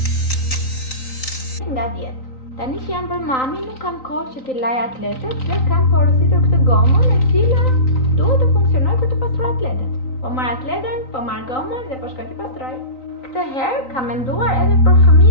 nga 10. Tani që jam për mami, nuk kam kohë që t'i laj atletet dhe kam porositur këtë gomën e cila duhet të funksionoj për të pastruar atletet. Po marr atleten, po marr gomën dhe po shkoj t'i pastroj. Këtë herë kam menduar edhe për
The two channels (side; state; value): right; late; 3.9 ms